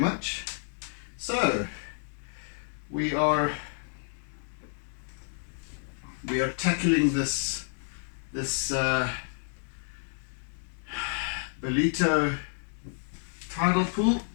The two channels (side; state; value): right; silent; digital silence